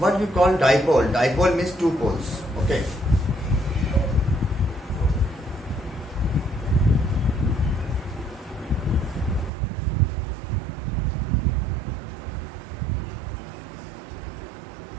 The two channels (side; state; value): left; drops out; at 9.5 s